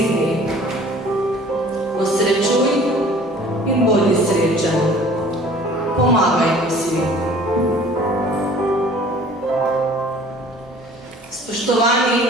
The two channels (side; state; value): both; normal; correlation 0.50